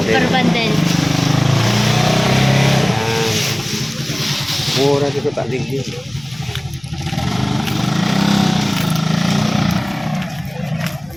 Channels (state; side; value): noise; left; rumble, 25 dB below the sound